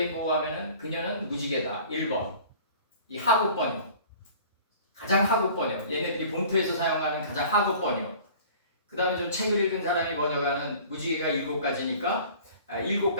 하면은 그녀는 무지개다. 1번. 이 하급 번역. 가장 하급 번역. 얘네들이 본토에서 사용하는 가장 하급 번역. 그 다음에 좀 책을 읽은 사람이 번역하는 무지개가 7가지니까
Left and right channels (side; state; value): both; inverted; correlation -0.46